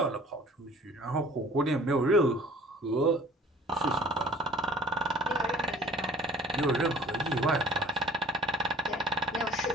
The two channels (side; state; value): both; normal; correlation 0.49